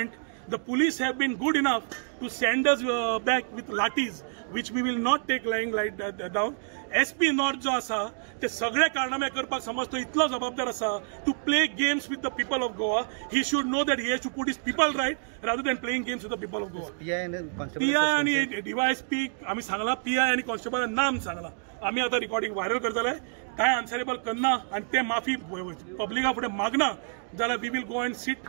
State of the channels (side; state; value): left; silent; digital silence